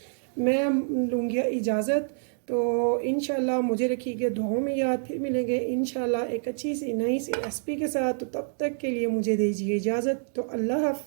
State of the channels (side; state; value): left; silent; digital silence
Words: मैं लूँगी इजाज़त। तो इंशाल्लाह मुझे रखिएगा दुआओं में याद। फिर मिलेंगे इंशाल्लाह एक अच्छी सी नई सी रेसिपी के साथ। तो तब तक के लिए मुझे दीजिए इजाज़त। तो अल्लाह